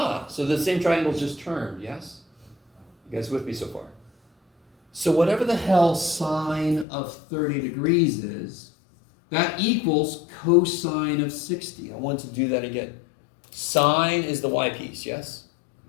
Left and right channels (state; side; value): drops out; right; at 6.9 s